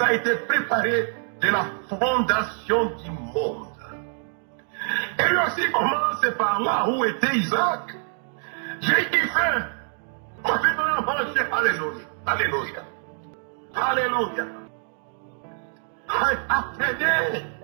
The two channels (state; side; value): silent; left; 62 dB below the other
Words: a été préparé de la fondation du monde. Et lui aussi commence par là où était Isaac. J'ai eu faim. On fait dans manger. Alléluia. Alléluia. Alléluia. Apprenez.